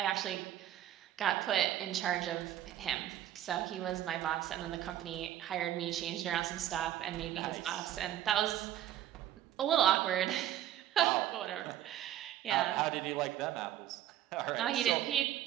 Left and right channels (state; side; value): quieter; left; 12.2 dB